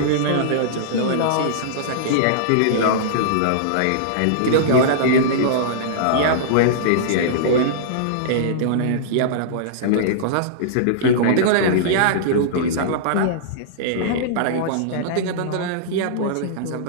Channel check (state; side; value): different; both; correlation -0.02